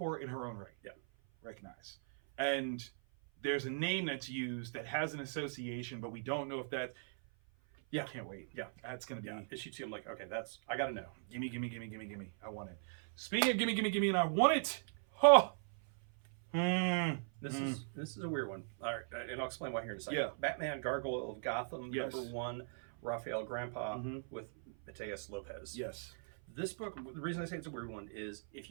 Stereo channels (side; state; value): left; silent; 52 dB below the other